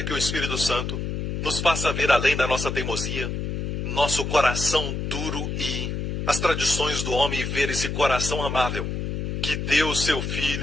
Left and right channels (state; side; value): noise; left; hum, 3 dB below the sound